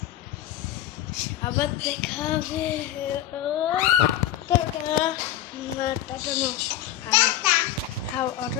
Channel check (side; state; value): right; quieter; 12.3 dB